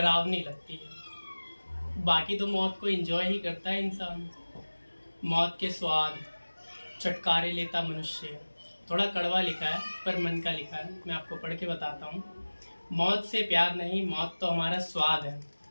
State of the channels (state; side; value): inverted; both; correlation -1.00